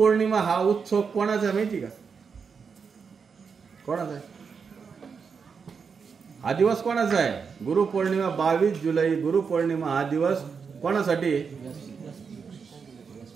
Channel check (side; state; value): left; quieter; 5.8 dB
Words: हा उत्सव कोणाचा माहिती का, कोणाचा आहे हा दिवस, कोणाचा आहे गुरुपौर्णिमा. 22 जुलै गुरुपौर्णिमा हा दिवस कोणासाठी,